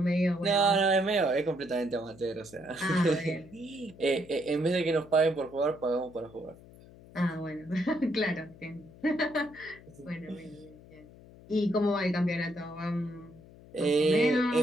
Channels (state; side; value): noise; left; hum, 21 dB below the sound